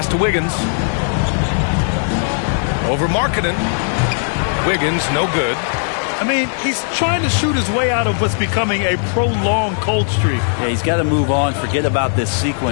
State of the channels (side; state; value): right; silent; 68 dB below the other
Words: to Wiggins. Over Markkanen. Wiggins, no good. I mean, he's trying to shoot his way out of what's becoming a prolonged cold streak. Yeah, he's got to move on, forget about this